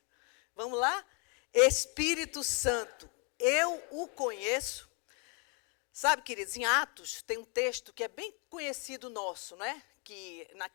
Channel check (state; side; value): quieter; right; 35.0 dB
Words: Vamos lá? Espírito Santo, eu o conheço. Sabe, queridos, em Atos tem um texto que é bem conhecido nosso, né? Que